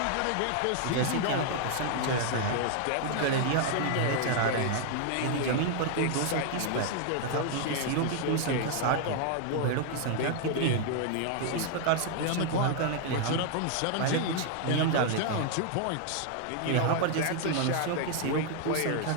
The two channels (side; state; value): both; different; correlation 0.00